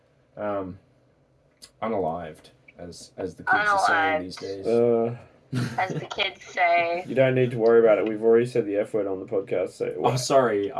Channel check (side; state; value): both; identical; correlation 1.00